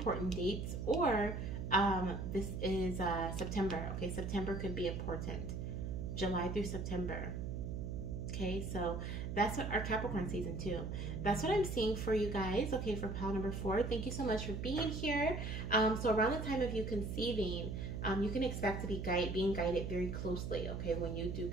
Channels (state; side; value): noise; right; hum, 4 dB below the sound